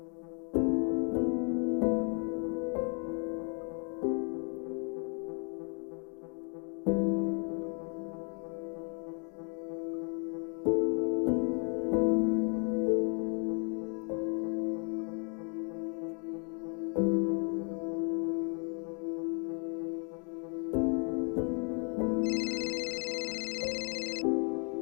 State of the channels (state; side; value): quieter; right; 40.0 dB